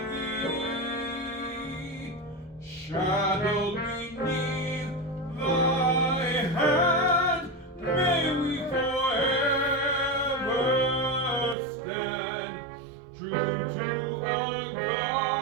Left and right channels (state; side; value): drops out; left; at 11.6 s